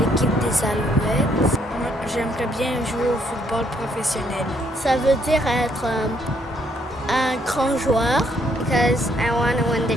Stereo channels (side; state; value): both; normal; correlation 0.70